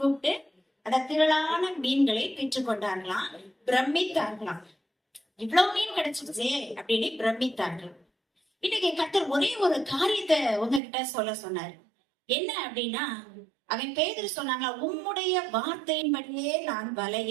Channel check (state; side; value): drops out; left; at 10.8 s